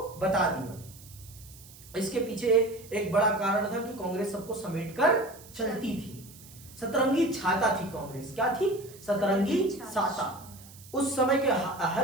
बता दिया। इसके पीछे एक बड़ा कारण था कि कांग्रेस सबको समेटकर चलती थी। सतरंगी छाता थी कांग्रेस। क्या थी? सतरंगी छाता। उस समय के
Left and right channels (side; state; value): right; noise; hiss, 20 dB below the sound